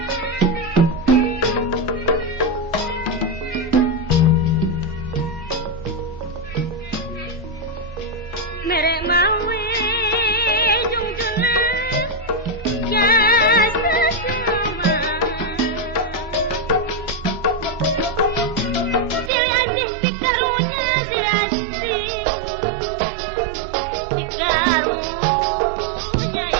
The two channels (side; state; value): left; drops out; at 19.3 s